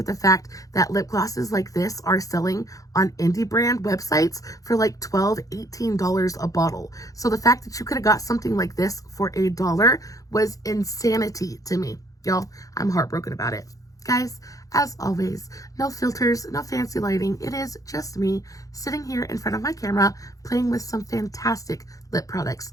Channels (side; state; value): right; late; 0.17 ms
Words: the fact that lip glosses like this are selling on indie brand websites for like $12, $18 a bottle. So the fact that you could have got something like this for $1 was insanity to me. Y'all, I'm heartbroken about it. Guys, as always, no filters, no fancy lighting. It is just me sitting here in front of my camera playing with some fantastic lip products.